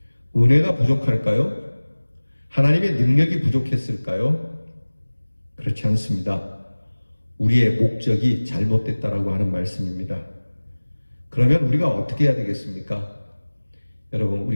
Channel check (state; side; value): inverted; both; correlation -1.00